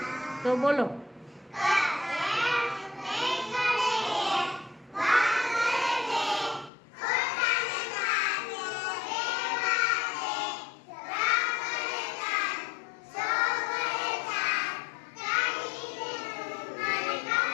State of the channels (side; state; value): right; drops out; at 6.7 s